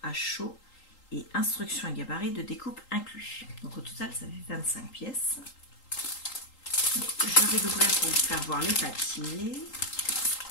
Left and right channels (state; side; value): late; right; 3.8 ms